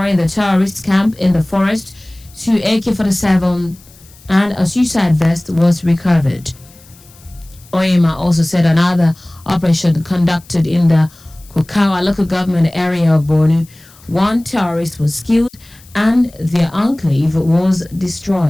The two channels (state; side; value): noise; left; hiss, 26 dB below the sound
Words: the terrorist camp in the forest, 2 AK-47 and a suicide vest was recovered. Oyema also said another operation conducted in the Kukawa local government area of Borno, 1 terrorist was killed and their enclave was